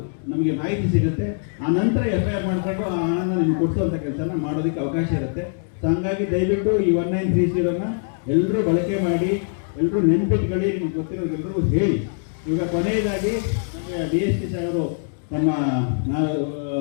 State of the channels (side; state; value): right; silent; digital silence